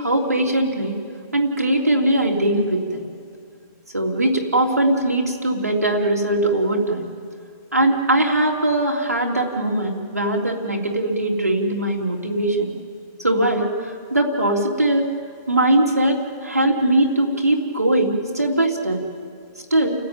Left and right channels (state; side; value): inverted; both; correlation -0.59